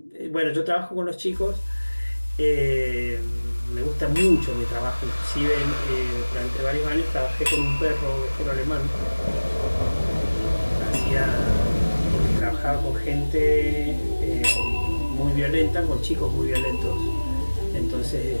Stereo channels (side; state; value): both; inverted; correlation -1.00